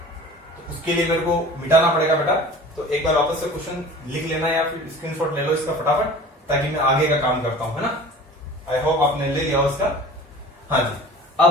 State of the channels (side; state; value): both; normal; correlation 0.42